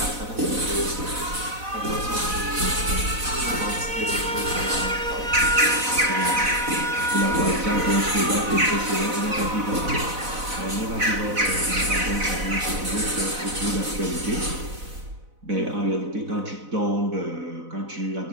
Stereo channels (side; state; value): left; late; 4.0 ms